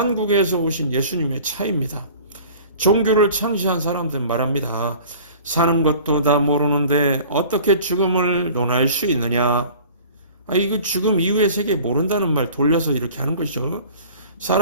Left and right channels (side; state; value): both; inverted; correlation -0.45